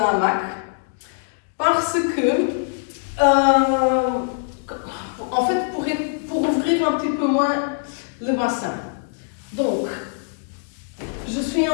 hamac. Parce que, en fait, pour ouvrir un petit peu moins le bassin. Donc, je suis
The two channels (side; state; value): right; silent; digital silence